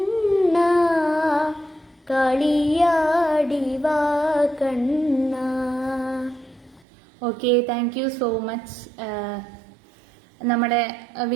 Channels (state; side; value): drops out; left; at 6.9 s